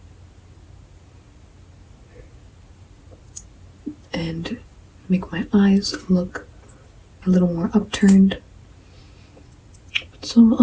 And make my eyes look a little more upturned. Put some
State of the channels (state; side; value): identical; both; correlation 1.00